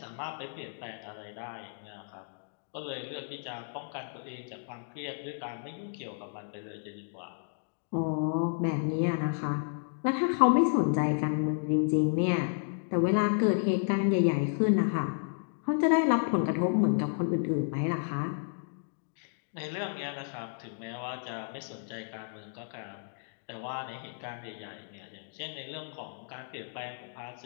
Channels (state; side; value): silent; right; digital silence